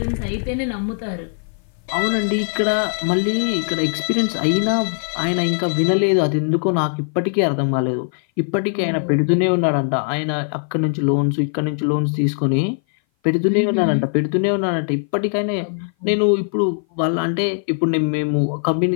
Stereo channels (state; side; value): silent; right; 58 dB below the other